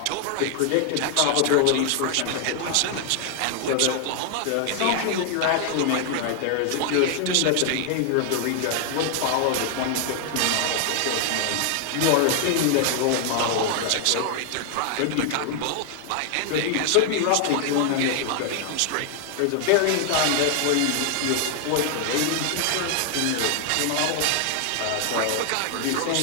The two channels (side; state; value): both; different; correlation 0.00